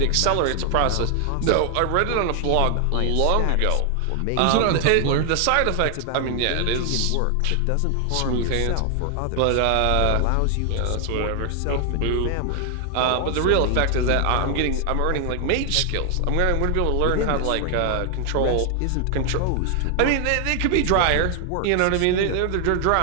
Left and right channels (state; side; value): different; both; correlation 0.00